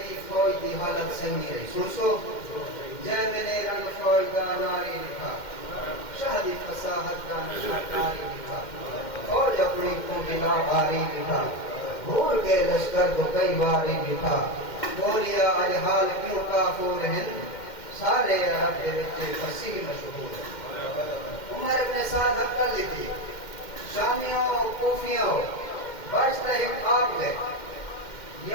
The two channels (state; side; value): late; right; 2.1 ms